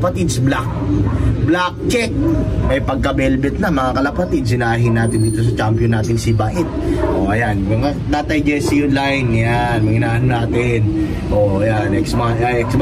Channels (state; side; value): identical; both; correlation 1.00